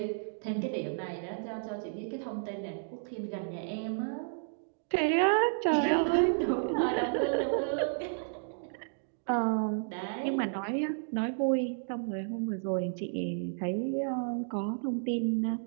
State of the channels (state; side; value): silent; left; digital silence